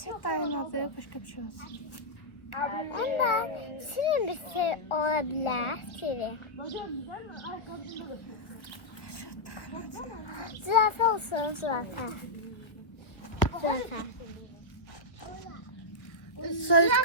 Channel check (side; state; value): right; late; 1.0 ms